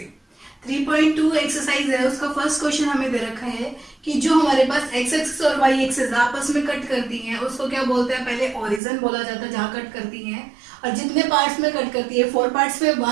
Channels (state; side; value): drops out; left; at 8.8 s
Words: 3.2 एक्सरसाइज है, उसका फर्स्ट क्वेश्चन हमें दे रखा है कि जो हमारे पास एक्स एक्सिस और वाई एक्सिस आपस में कट करती हैं उसको क्या बोलते हैं, पहले ओरिजिन बोला जाता है जहां कट करती हैं, और जितने पार्ट्स में कट करती है 4 पार्ट्स में